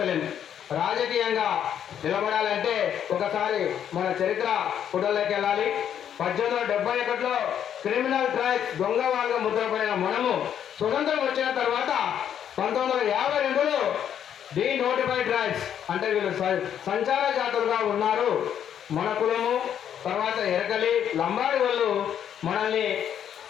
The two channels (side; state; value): right; quieter; 9.3 dB